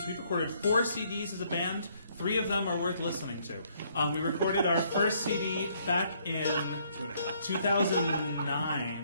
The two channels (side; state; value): both; inverted; correlation -0.68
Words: We've recorded 4 CDs as a band. 3 of them are worth listening to. We recorded our first CD back in